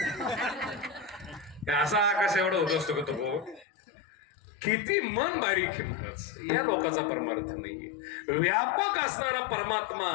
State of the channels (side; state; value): right; drops out; at 3.7 s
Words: असा आकाश एवढा होत असतो का तो, किती मन बारीक आहे महाराज. या लोकांचा परमार्थ नाहीये. व्यापक असणारा परमात्मा